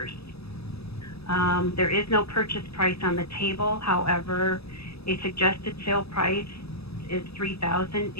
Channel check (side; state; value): right; late; 0.78 ms